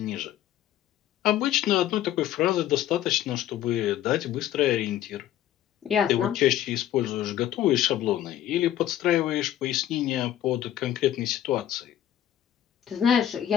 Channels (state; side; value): quieter; right; 11.9 dB